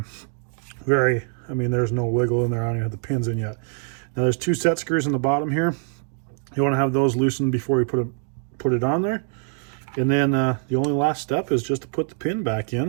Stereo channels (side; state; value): left; silent; 56 dB below the other